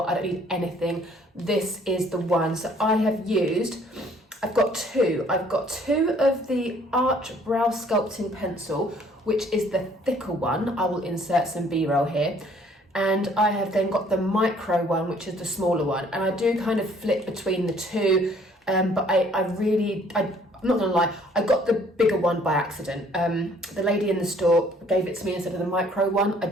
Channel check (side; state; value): both; normal; correlation 0.59